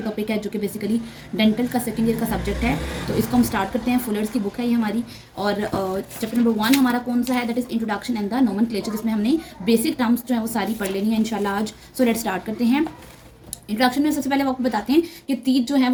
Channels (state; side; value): identical; both; correlation 1.00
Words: टॉपिक है जो कि बेसिकली डेंटल का सेकंड ईयर का सब्जेक्ट है। तो इसको हम स्टार्ट करते हैं। फुलर्स की बुक है ये हमारी, और चैप्टर नंबर 1 हमारा कौन सा है, that is introduction and the nomenclature, जिसमें हमने बेसिक टर्म्स जो है वो सारी पढ़ लेनी है इंशाल्लाह आज। सो लेट्स स्टार्ट करते हैं। इंट्रोडक्शन में सबसे पहले आपको बताते हैं कि टीथ जो है